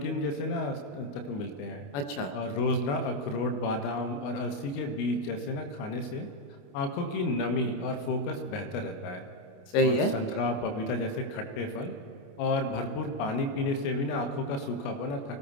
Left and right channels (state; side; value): late; right; 28 ms